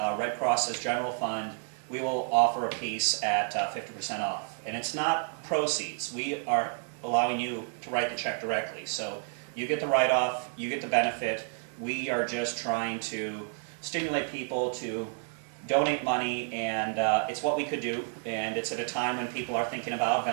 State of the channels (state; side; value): silent; left; 58 dB below the other